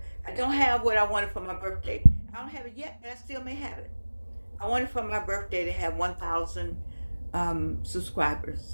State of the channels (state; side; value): inverted; both; correlation -1.00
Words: I don't have what I wanted for my birthday. I don't have it yet, but I still may have it. I wanted for my birthday to have 1,000